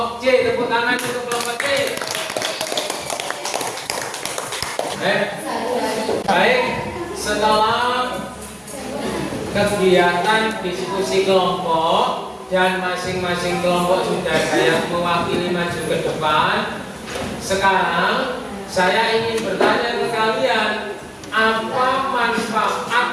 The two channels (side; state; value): both; identical; correlation 1.00